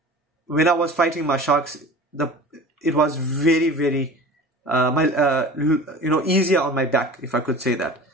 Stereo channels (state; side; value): normal; both; correlation 0.39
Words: when I was fighting my sharks, it was very easier on my back, if I could say that.